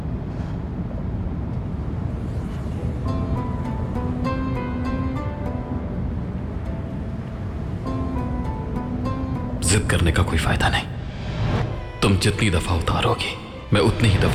जिद करने का कोई फायदा नहीं। तुम जितनी दफा उतारोगी, मैं उतनी ही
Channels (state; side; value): identical; both; correlation 1.00